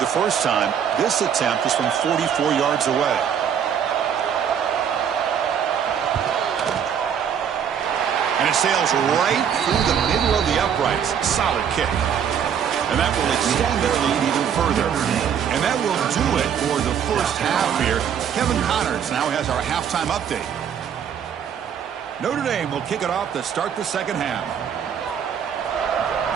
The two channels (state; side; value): quieter; left; 8.2 dB